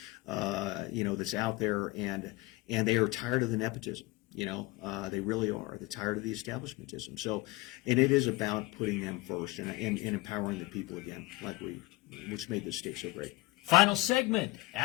that's out there, and they are tired of the nepotism. They really are. They're tired of the establishmentism. So, and it is about putting them first and empowering the people again, which made this state so great. Final segment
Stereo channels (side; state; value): right; quieter; 21.1 dB